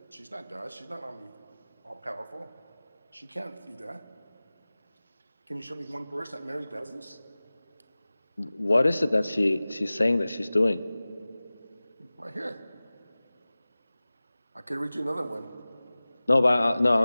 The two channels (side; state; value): both; inverted; correlation -0.98